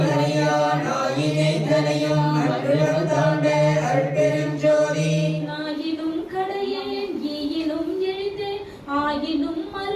மறியான் ஆயினை தனையும் அற்புதம் தாண்ட அருட்பெருஞ்சோதி ஆயினும் கடையேன் ஈயினும் எளிதேன் ஆயினும்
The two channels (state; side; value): identical; both; correlation 1.00